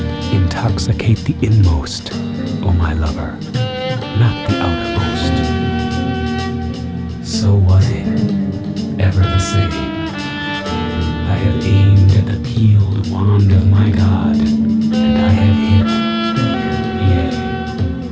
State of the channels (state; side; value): identical; both; correlation 1.00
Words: Intoxicate the inmost, O my lover, not the outermost. So was it, ever the same. I have aimed at the peeled wand of my God, and I have hit. Yea,